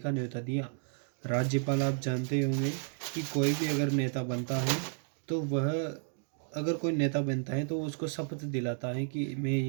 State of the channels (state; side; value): silent; left; 56 dB below the other